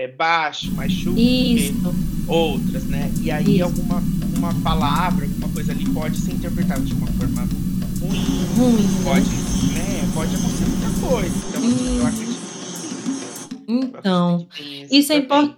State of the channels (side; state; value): both; identical; correlation 1.00